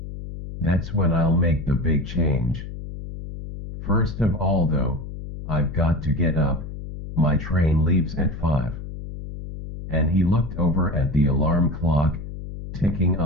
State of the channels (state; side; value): noise; left; hum, 10 dB below the sound